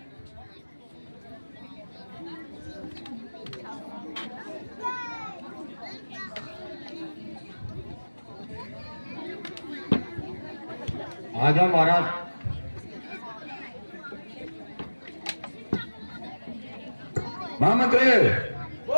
आ जाओ महाराज। महामंत्री,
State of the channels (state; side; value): inverted; both; correlation -1.00